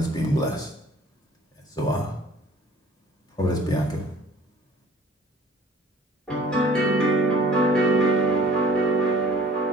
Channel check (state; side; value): normal; both; correlation 0.51